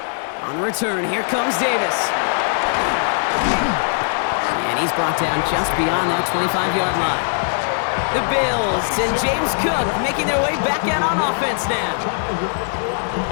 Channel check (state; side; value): silent; right; digital silence